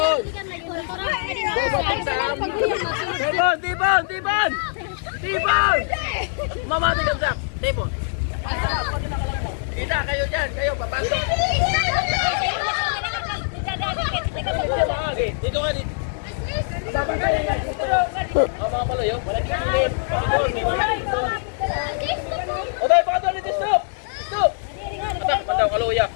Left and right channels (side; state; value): right; silent; digital silence